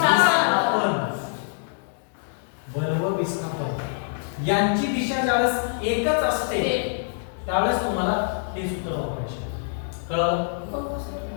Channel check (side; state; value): right; silent; digital silence